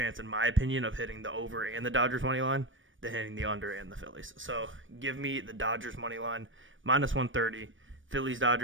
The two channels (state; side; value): late; left; 0.56 ms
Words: in my opinion, of hitting the over and the Dodgers money line than hitting the under and the Phillies. So give me the Dodgers money line -130, Phillies